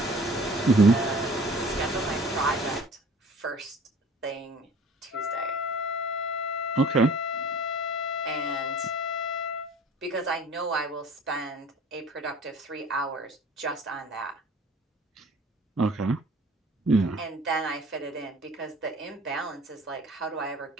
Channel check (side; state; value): both; normal; correlation 0.48